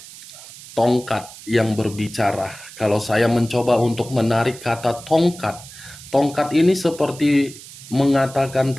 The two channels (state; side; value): noise; right; hiss, 17 dB below the sound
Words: tongkat yang berbicara. Kalau saya mencoba untuk menarik kata tongkat, tongkat ini seperti mengatakan